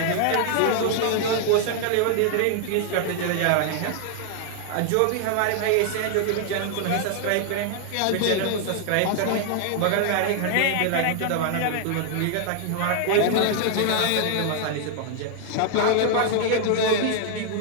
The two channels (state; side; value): different; both; correlation 0.00